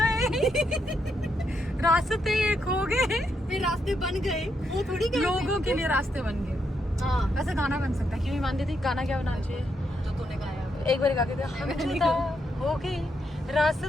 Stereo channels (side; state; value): both; normal; correlation 0.80